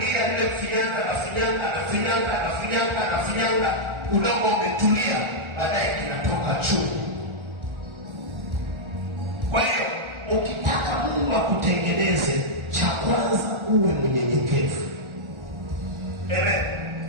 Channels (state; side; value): late; left; 1.4 ms